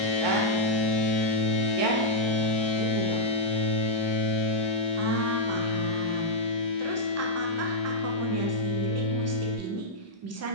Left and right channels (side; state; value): right; late; 1.3 ms